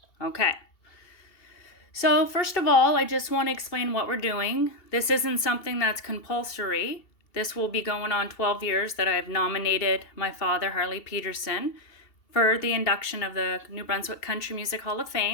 Okay. So, first of all, I just want to explain what we're doing. This isn't something that's compulsory. This will be going on 12 years that I've nominated my father, Harley Petersen, for the induction of the New Brunswick Country Music Hall of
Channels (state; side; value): late; right; 2.7 ms